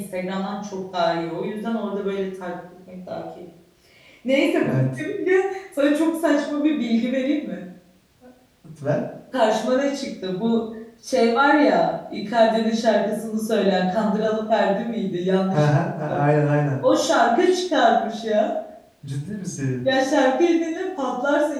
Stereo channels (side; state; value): both; identical; correlation 1.00